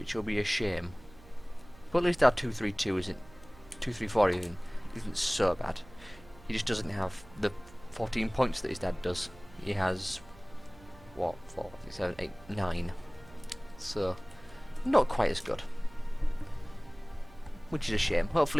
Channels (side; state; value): right; noise; hum, 22 dB below the sound